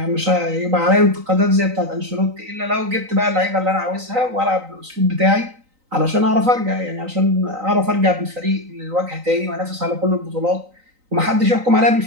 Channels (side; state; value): left; late; 3.9 ms